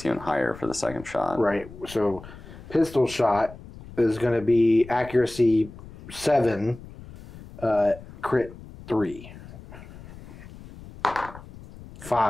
even higher for the second shot. Right. So pistol shot is going to be accuracy 7, crit 3.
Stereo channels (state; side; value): noise; left; rumble, 17 dB below the sound